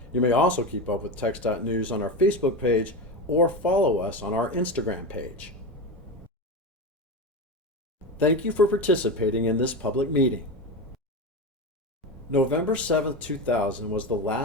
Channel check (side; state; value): both; normal; correlation 0.20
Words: You may also keep up with TxDOT news on our Facebook page or follow us on our Instagram page. Thank you for participating in this public meeting. November 7, 2000 was the